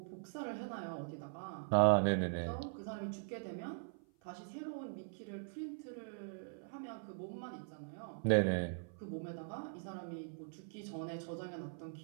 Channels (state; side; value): silent; left; 50 dB below the other